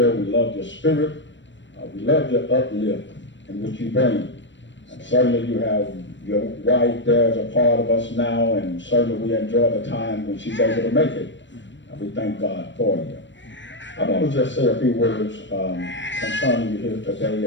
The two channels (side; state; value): right; late; 0.53 ms